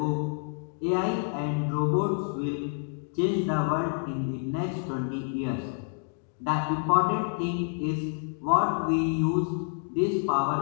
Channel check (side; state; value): right; silent; 59 dB below the other